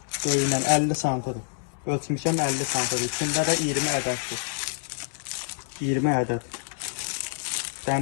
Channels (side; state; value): right; silent; 60 dB below the other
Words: Böyüyündən 50 santıdır. Ölçmüşəm 50 santıdır. İçində də 20 ədəddir. 20 ədəd.